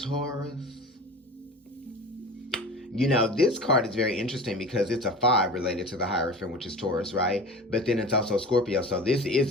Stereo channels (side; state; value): both; normal; correlation 0.36